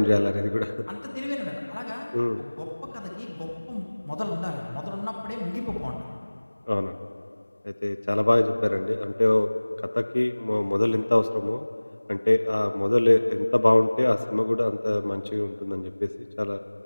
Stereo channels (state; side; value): inverted; both; correlation -1.00